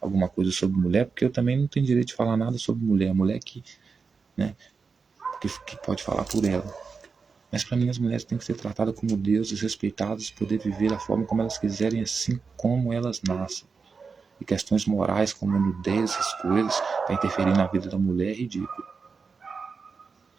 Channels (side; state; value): left; quieter; 5.0 dB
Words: alguma coisa sobre mulher, porque eu também não tenho direito de falar nada sobre mulher, mulher que, né, que pode falar por ela. Mas para mim as mulheres têm que ser tratadas como deuses, respeitadas, poder viver da forma como elas quiserem, assim como elas nascem. E questões morais como nudez, essas coisas, para interferir na vida da mulher é ridículo.